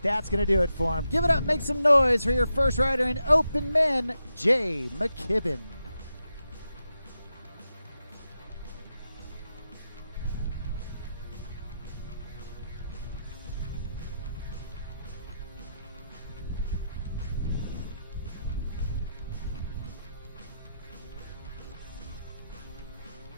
that's going to do it for him. Give it up, make some noise for your first rider in open men, Jay McKibben.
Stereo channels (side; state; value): both; inverted; correlation -0.86